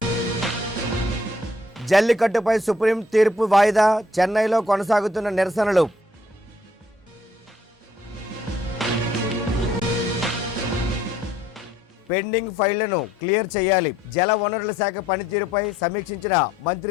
జల్లికట్టుపై సుప్రీం తీర్పు వాయిదా, చెన్నైలో కొనసాగుతున్న నిరసనలు. పెండింగ్ ఫైళ్లను క్లియర్ చేయాలి, జల వనరుల శాఖ పనితీరుపై సమీక్షించిన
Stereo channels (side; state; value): both; normal; correlation 0.65